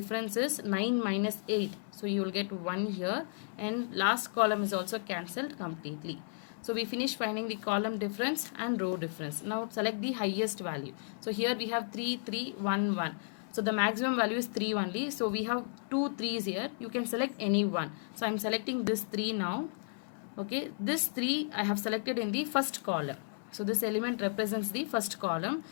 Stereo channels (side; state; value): right; silent; 55 dB below the other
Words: is 9 minus 8, so you will get 1 here. And last column is also cancelled completely. So we finish finding the column difference and row difference. Now select the highest value. So here we have 3, 3, 1, 1. So the maximum value is 3 only. So we have 2 3's here. You can select any one. So I am selecting this 3 now. Okay, this 3 I have selected in the first column. So this element represents the first column.